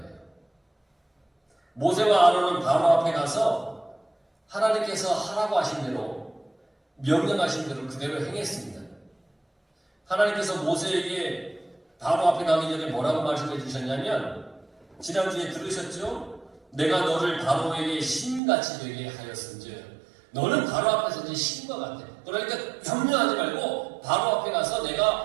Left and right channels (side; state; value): left; drops out; at 18.4 s